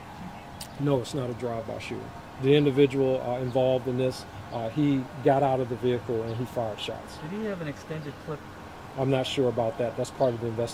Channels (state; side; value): identical; both; correlation 1.00